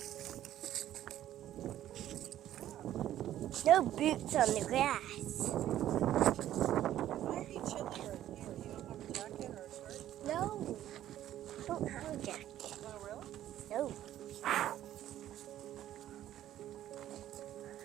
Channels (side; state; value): left; quieter; 12.4 dB